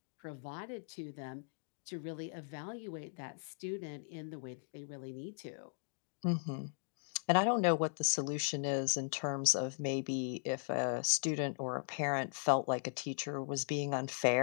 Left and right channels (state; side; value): silent; right; digital silence